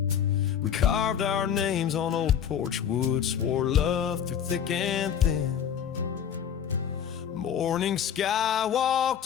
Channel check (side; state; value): right; quieter; 8.6 dB